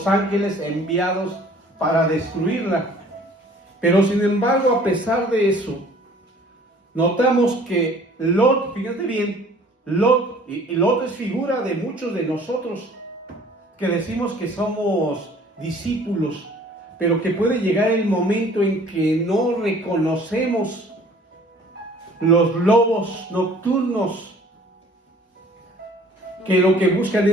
ángeles enviados para destruirla. Pero sin embargo, a pesar de eso, notamos que Lot, fíjate bien, Lot, y Lot es figura de muchos de nosotros que decimos que somos discípulos, pero que puede llegar el momento en que no reconocemos los lobos nocturnos que lo que buscan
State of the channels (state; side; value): normal; both; correlation 0.52